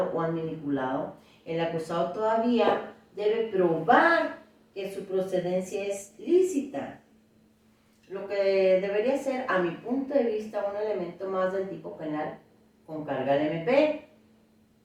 o manipulado, el acusado todavía debe probar que su procedencia es lícita. Lo que debería ser, a mi punto de vista, un elemento más del tipo penal con carga al MP.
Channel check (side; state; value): both; identical; correlation 1.00